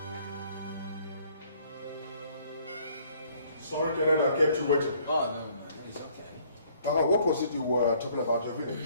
Sorry, Kenneth, I kept you waiting. Oh, no, it's okay. What was it you were talking about your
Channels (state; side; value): inverted; both; correlation -0.61